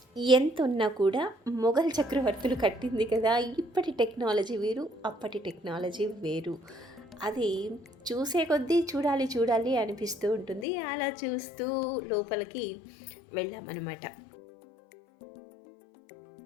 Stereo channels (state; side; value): drops out; right; at 10.7 s